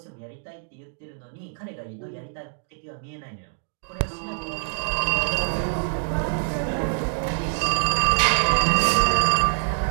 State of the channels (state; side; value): silent; left; digital silence